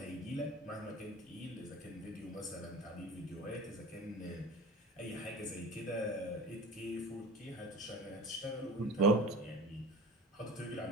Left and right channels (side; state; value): both; normal; correlation 0.37